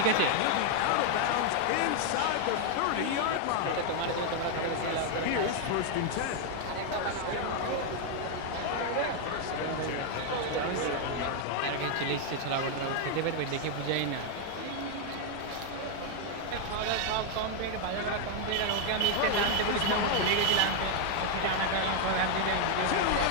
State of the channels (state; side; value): different; both; correlation 0.00